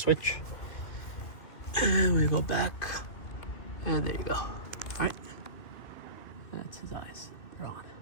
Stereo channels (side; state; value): right; late; 2.9 ms